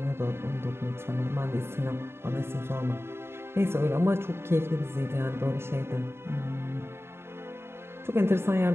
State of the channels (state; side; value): late; left; 0.12 ms